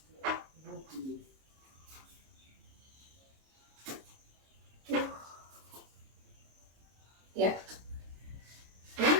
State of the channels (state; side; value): late; left; 26 ms